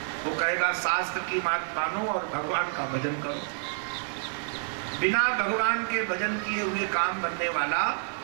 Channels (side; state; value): left; silent; 59 dB below the other